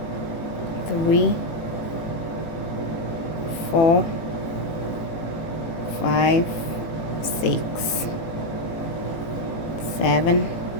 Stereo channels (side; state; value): right; late; 18 ms